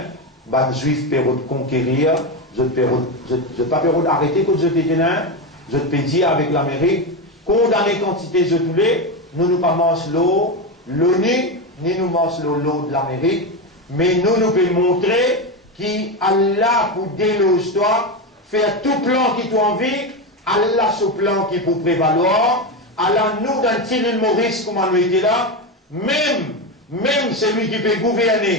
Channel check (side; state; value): both; normal; correlation 0.15